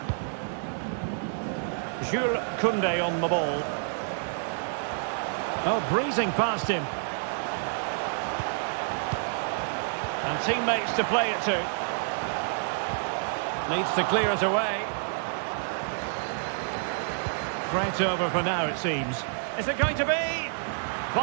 Jules Koundé on the ball. Oh, breezing past him. And teammates to play it to. Needs to clear it away. Threat over for now, it seems. Is it going to be?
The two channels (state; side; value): silent; left; digital silence